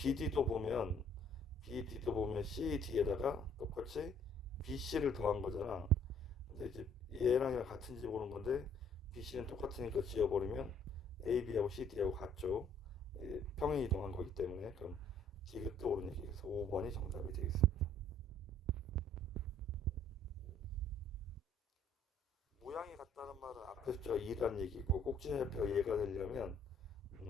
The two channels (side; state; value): both; normal; correlation 0.60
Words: 보면 CD에다가 똑같이 BC를 더한 거잖아. 근데 이제 얘랑 같은지 보는 건데 BC는 똑같으니까 지워버리면 AB하고 CD하고 같죠. 평행 이동한 거기 때문에 그럼 디귿도 옳은 얘기에서 5번이 정답이 되겠습니다. 모양이 같다는 말은 앞에 숫자가 2란 얘기고 꼭지좌표가 얘가 되려면